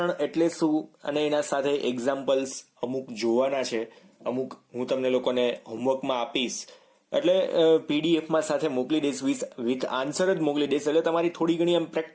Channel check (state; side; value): identical; both; correlation 1.00